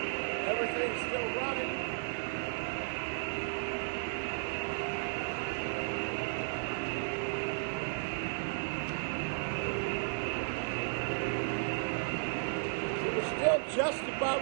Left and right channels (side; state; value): left; silent; digital silence